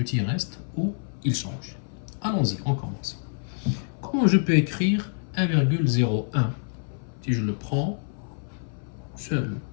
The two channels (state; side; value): silent; right; 60 dB below the other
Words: reste ou il change? Allons-y, on commence. Comment je peux écrire 1,01 si je le prends seul?